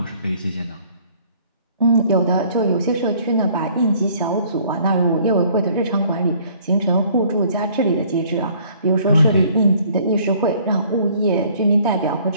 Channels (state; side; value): inverted; both; correlation -0.58